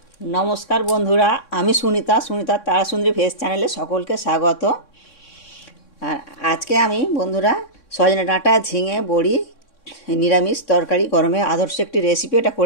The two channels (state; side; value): late; right; 3.6 ms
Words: नमस्कार बंधुरा आमी सुनीता सुनीता तारासुंदरी भेज चैनले सकल के स्वागत। और आज के आमी बंधुरा सजने डाँटा झिंगे बड़ी निरामिष तरकारी गरमे आदर्श एक रेसिपि एटा